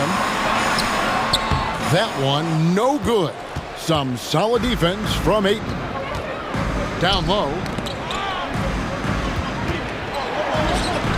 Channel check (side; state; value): both; identical; correlation 1.00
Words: That one no good. Some solid defense from Ayton. Down low.